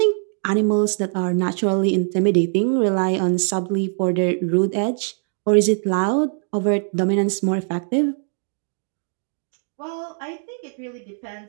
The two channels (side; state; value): left; silent; 57 dB below the other